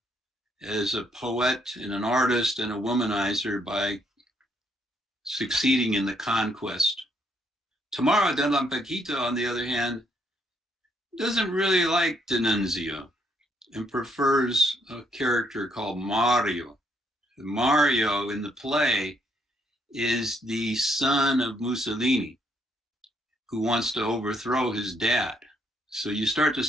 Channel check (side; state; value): both; normal; correlation 0.72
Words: as a poet and an artist and a womanizer by succeeding in the conquest. Tamara de Lampaquita, on the other hand, doesn't really like D'Annunzio and prefers a character called Mario. Mario in the play is the son of Mussolini, who wants to overthrow his dad. So you start to